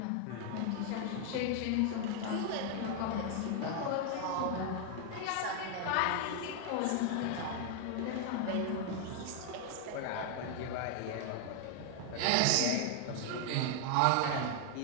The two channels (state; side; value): different; both; correlation 0.00